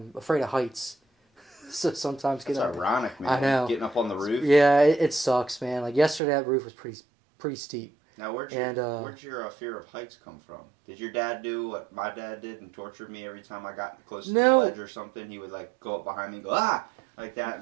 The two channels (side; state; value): left; drops out; at 6.2 s